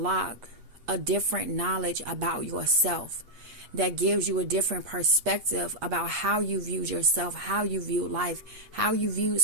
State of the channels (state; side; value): late; left; 8.4 ms